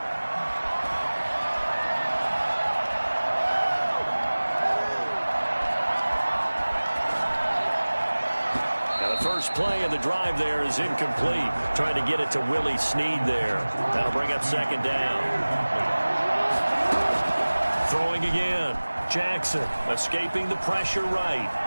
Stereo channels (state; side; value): inverted; both; correlation -1.00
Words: Now the first play of the drive there is incomplete. Trying to get it to Willie Snead there. That'll bring up 2nd down. Throwing again. Jackson escaping the pressure right.